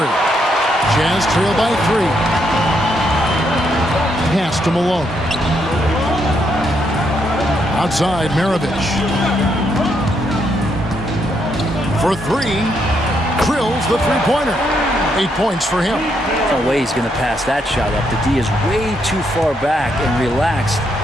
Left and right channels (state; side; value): normal; both; correlation 0.76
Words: Jazz trail by 3. Pass to Malone. Outside, Maravich. For 3. Drills the 3-pointer. 8 points for him. No way he's going to pass that shot up. The D is way too far back and relaxed